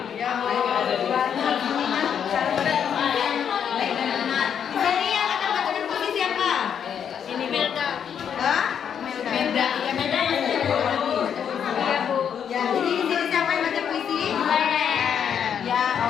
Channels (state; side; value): quieter; right; 8.1 dB